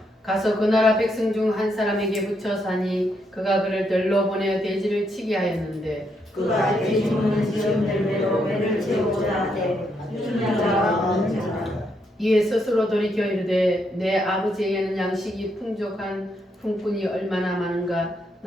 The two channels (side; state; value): both; normal; correlation 0.77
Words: 가서 그 나라 백성 중 한 사람에게 붙여 사니 그가 그를 들러 보내어 돼지를 치게 하였는데 그가 돼지 먹는 지금 열매로 배를 채우고자 하되 주는 자가 없는 자라. 이에 스스로 돌이켜 이르되 내 아버지에게는 양식이 풍족한 품꾼이 얼마나 많은가